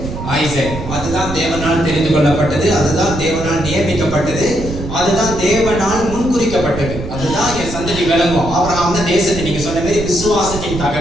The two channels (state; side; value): noise; right; rumble, 8 dB below the sound